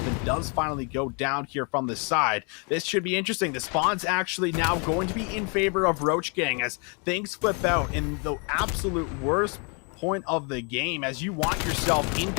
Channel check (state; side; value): quieter; right; 35.8 dB